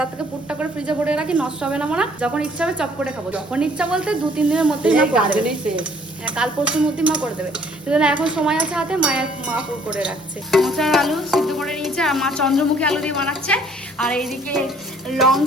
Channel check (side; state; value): both; normal; correlation 0.60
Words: তার থেকে পুরটা করে ফ্রিজে ভরে রাখি, নষ্ট হবে না মনে, যখন ইচ্ছা হবে চপ করে খাবো। যখন ইচ্ছা বলতে 2-3 দিনের মধ্যেই মা করে দেবে। হ্যাঁ, কাল পরশুর মধ্যেই মা করে দেবে। সেজন্য এখন সময় আছে হাতে, মা পুর করে রাখছে। মোচার আলু সিদ্ধ করে নিয়েছে, আর মা চন্দ্রমুখী আলু দিয়ে বানাচ্ছে। আর এইদিকে